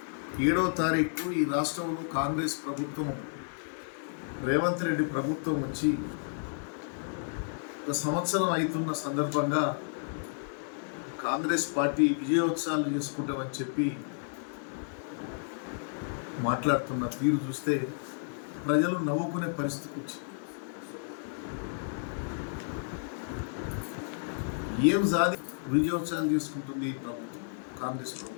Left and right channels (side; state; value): right; silent; digital silence